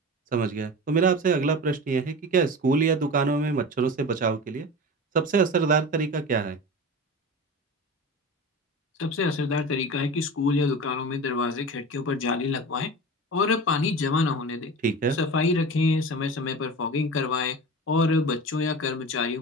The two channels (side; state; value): both; normal; correlation 0.31